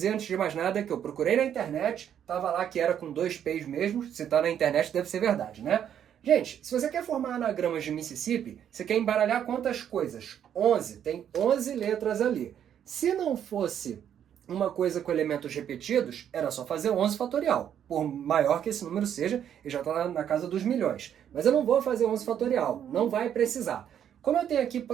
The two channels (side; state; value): left; quieter; 9.4 dB